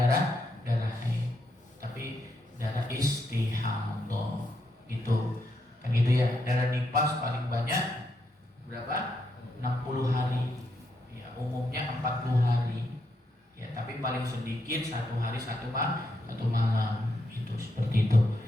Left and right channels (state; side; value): normal; both; correlation 0.80